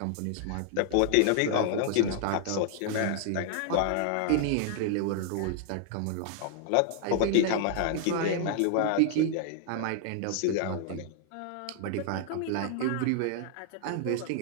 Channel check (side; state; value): both; different; correlation 0.00